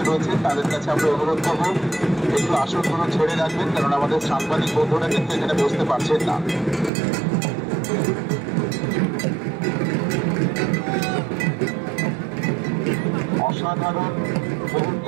রয়েছে তাদের কাছে আমরা অনুরোধ করবো একটু আসনগুলো ছেড়ে রাখবেন, কারণ আমাদের সাংবাদিক বন্ধুরা কিন্তু এখানে বসতে পারছেন না। অসাধারণ মুহূর্ত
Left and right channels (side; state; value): left; drops out; at 6.9 s